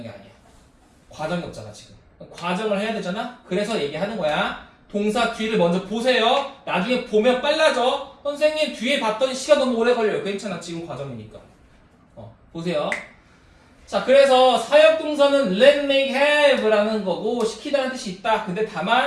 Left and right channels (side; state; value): both; identical; correlation 1.00